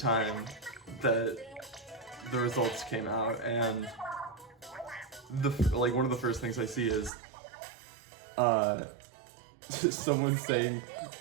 that the results came out, and one of the first things I see is someone saying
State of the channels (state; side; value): drops out; left; at 7.1 s